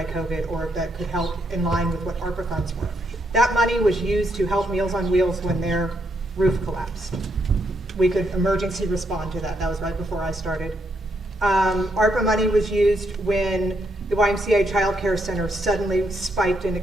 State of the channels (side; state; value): both; normal; correlation 0.77